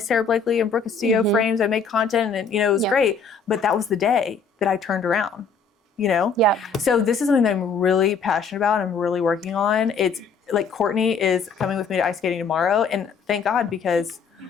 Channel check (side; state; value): right; quieter; 5.3 dB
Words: Blakely and Brooke Castillo frames. I made content and it was great. But that was the day that I turned around. Yeah. So this is something that I'm really passionate about. I'm really working on. It's like Courtney is coming with me to ice skating tomorrow, and thank God, because